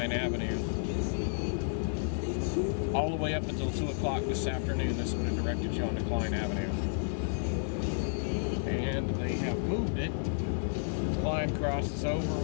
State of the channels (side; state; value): right; silent; digital silence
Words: Avenue. All the way up until 2 o'clock this afternoon, this would have directed you onto Klein Avenue. And they have moved it. Klein crosses over.